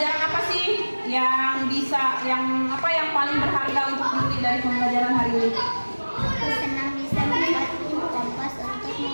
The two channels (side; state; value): both; inverted; correlation -1.00